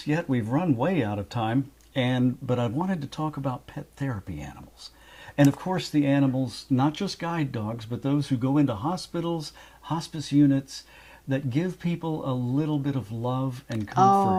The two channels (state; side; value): identical; both; correlation 1.00